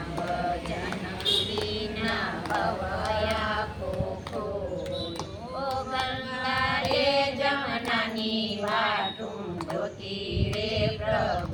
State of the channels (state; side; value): identical; both; correlation 1.00